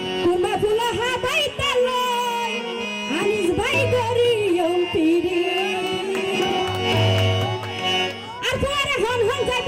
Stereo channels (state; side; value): identical; both; correlation 1.00